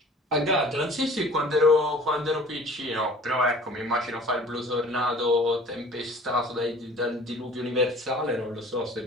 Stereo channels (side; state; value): both; normal; correlation 0.47